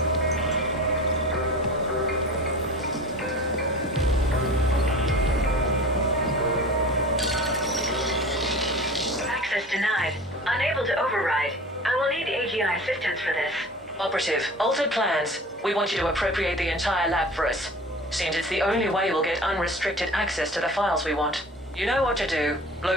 Access denied. Unable to override. I will need AGI assistance for this. Operative, altered plans. We want you to appropriate the entire lab for us. Seems it's the only way we'll get unrestricted access to the files we want. You know what to do.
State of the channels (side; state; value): both; normal; correlation 0.38